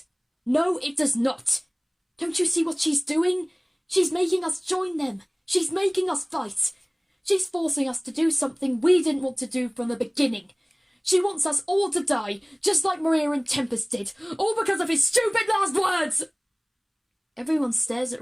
No, it does not. Don't you see what she's doing? She's making us join them. She's making us fight. She's forcing us to do something we didn't want to do from the beginning. She wants us all to die, just like Mya and Tempest did, all because of his stupid last words! Everyone stares at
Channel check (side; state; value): both; identical; correlation 1.00